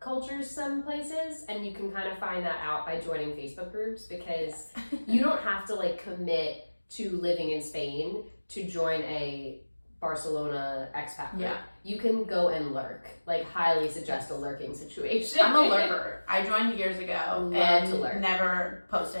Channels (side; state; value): both; inverted; correlation -1.00